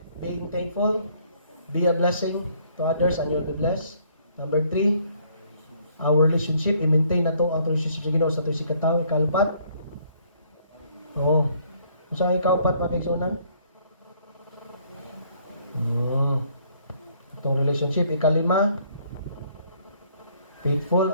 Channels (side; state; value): both; inverted; correlation -0.64